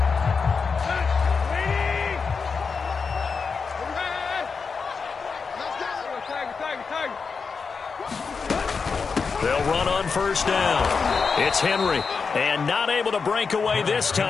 They'll run on first down. It's Henry. And not able to break away this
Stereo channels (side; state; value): right; quieter; 5.2 dB